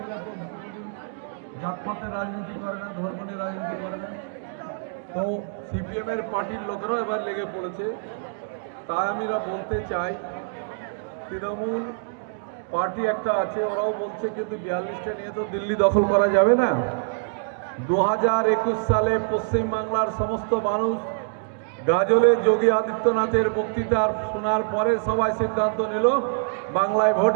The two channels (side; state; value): left; silent; digital silence